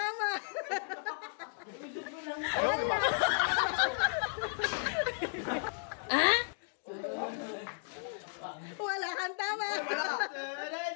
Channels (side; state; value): right; silent; digital silence